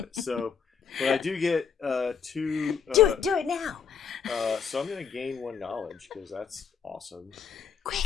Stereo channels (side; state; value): right; quieter; 6.7 dB